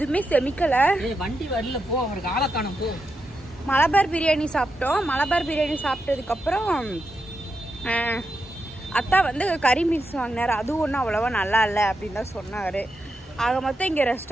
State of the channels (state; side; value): normal; both; correlation 0.86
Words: செமிக்கலை. வண்டி வரல போ. அவருக்கு ஆளை காணும் போ. மலபார் பிரியாணி சாப்பிட்டோம். மலபார் பிரியாணி சாப்பிட்டதுக்கப்புறம் அத்தா வந்து கறி மீல்ஸ் வாங்கினார். அதுவும் ஒன்றும் அவ்வளோவா நல்லா இல்லை அப்படின்னு தான் சொன்னார். ஆக மொத்தம் இங்கே